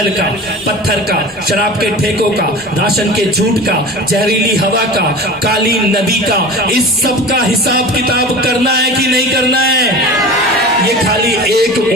का, पत्थर का, शराब के ठेकों का, राशन के झूठ का, जहरीली हवा का, काली नदी का, इस सब का हिसाब किताब करना है कि नहीं करना है? ये खाली एक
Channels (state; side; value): normal; both; correlation 0.34